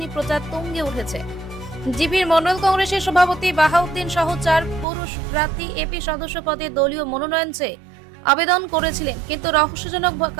প্রচার তুঙ্গে উঠেছে। জিপির মন্ডল কংগ্রেসের সভাপতি বাহাউদ্দিন সহ 4 পুরুষ প্রার্থী এপি সদস্য পদে দলীয় মনোনয়ন চেয়ে আবেদন করেছিলেন, কিন্তু রহস্যজনক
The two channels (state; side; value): drops out; left; at 4.9 s